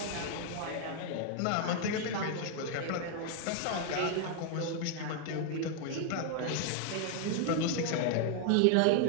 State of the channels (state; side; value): different; both; correlation 0.00